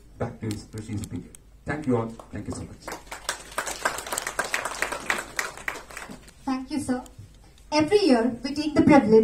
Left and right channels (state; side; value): identical; both; correlation 1.00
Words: back to its precious period. Thank you all. Thank you so much. Thank you, sir. Every year, we take the